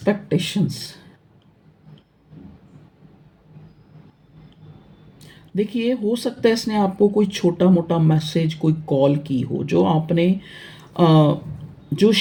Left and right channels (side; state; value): both; identical; correlation 1.00